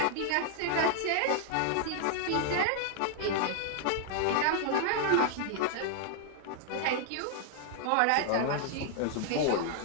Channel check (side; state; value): both; different; correlation 0.00